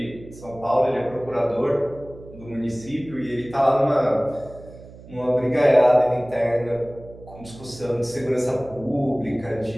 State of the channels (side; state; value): right; noise; hum, 19 dB below the sound